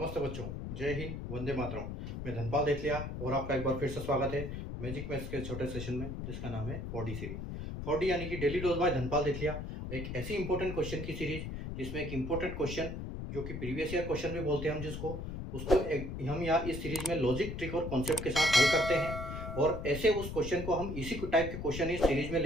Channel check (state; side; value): noise; left; rumble, 6 dB below the sound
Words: नमस्ते बच्चों, जय हिंद, वंदे मातरम। मैं धनपाल देथलिया और आपका एक बार फिर से स्वागत है मैजिक मैथ्स के छोटे सेशन में, जिसका नाम है 4D सीरीज। 4D यानी कि डेली डोज बाय धनपाल देथलिया, एक ऐसी इंपॉर्टेंट क्वेश्चन की सीरीज जिसमें एक इंपॉर्टेंट क्वेश्चन जो कि प्रीवियस ईयर क्वेश्चन भी बोलते हैं हम जिसको, उसको हम यहाँ इस सीरीज में लॉजिक, ट्रिक और कॉन्सेप्ट के साथ हल करते हैं। और ऐसे उस क्वेश्चन को हम इसी टाइप के क्वेश्चन इस सीरीज में